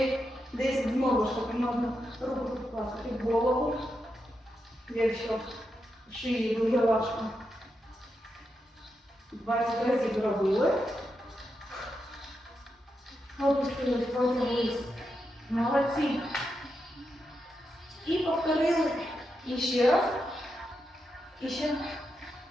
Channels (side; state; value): both; normal; correlation 0.86